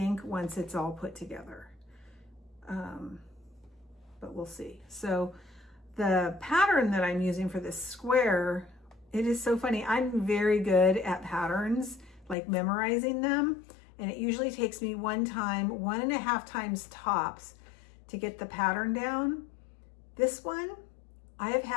once it's all put together. But we'll see. So the pattern that I'm using for this square, it is so funny. I'm very good at patterns, like memorizing them. And it usually takes me 1.5 times tops to get the pattern down. This one, I have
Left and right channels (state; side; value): drops out; right; at 12.4 s